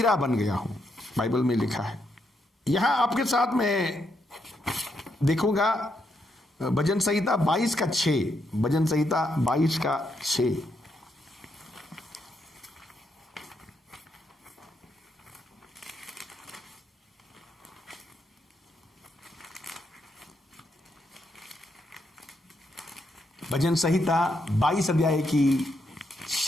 बन गया हूं, बाइबल में लिखा है। यहां आपके साथ में देखूंगा भजन संहिता 22:6, भजन संहिता 22:6। भजन संहिता 22 अध्याय की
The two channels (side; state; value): both; normal; correlation 0.79